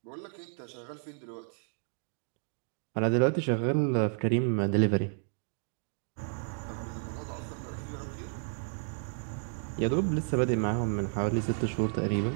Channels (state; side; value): silent; left; 56 dB below the other